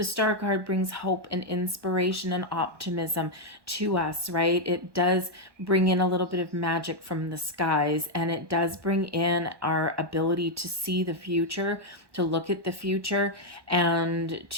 star card brings hope and inspiration and optimism to us, right? It does bring in a little bit of magic from the skies, and it does bring in our ability to see the future, to look at the future, and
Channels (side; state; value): left; late; 1.1 ms